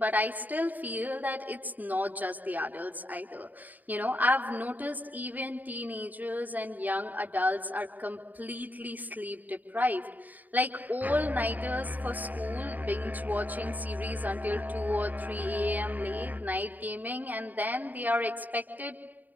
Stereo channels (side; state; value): left; late; 0.083 ms